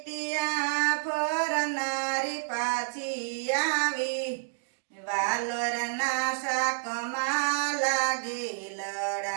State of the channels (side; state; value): left; silent; digital silence